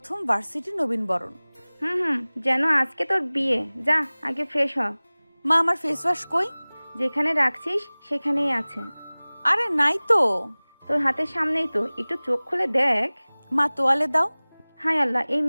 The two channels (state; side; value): inverted; both; correlation -1.00